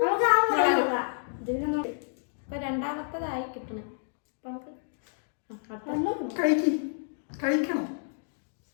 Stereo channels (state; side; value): silent; right; digital silence